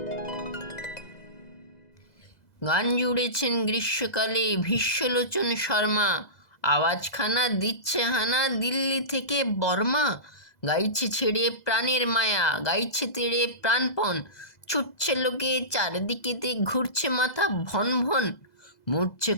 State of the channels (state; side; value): late; right; 2.0 ms